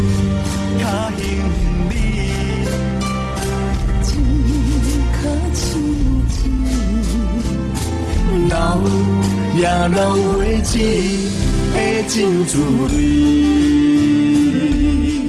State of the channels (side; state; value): both; identical; correlation 1.00